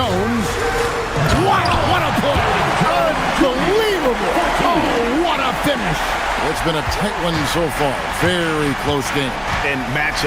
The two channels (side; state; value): both; identical; correlation 1.00